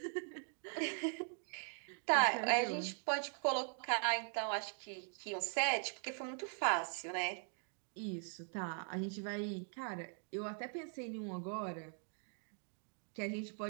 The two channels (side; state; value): left; silent; 50 dB below the other